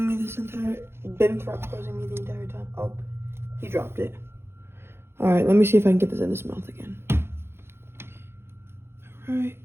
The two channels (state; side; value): late; left; 0.12 ms